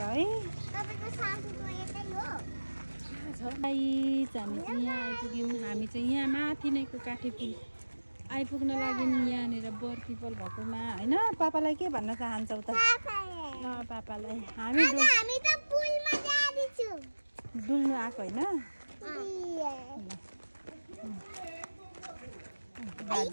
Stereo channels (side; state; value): both; inverted; correlation -1.00